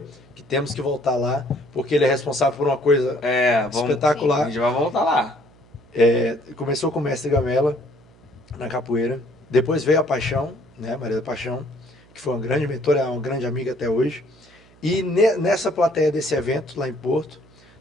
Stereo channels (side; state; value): right; noise; hum, 28 dB below the sound